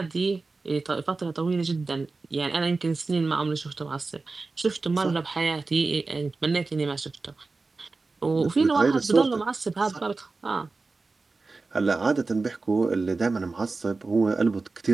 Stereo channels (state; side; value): quieter; left; 3.8 dB